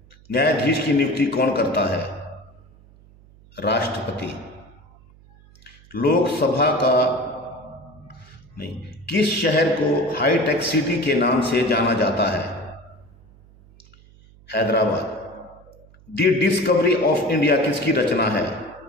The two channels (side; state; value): right; noise; hum, 26 dB below the sound